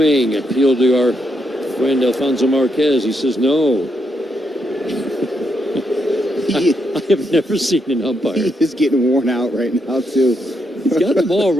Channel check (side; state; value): both; normal; correlation 0.80